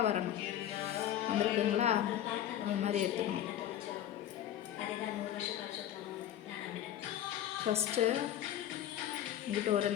வரணும். வந்துருக்குங்களா? அது மாதிரி எடுத்துக்கணும். ஃபஸ்ட்டு இங்கிட்ட ஒரு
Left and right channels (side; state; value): right; quieter; 11.5 dB